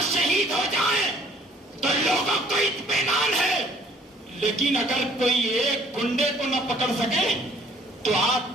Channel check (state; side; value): normal; both; correlation 0.59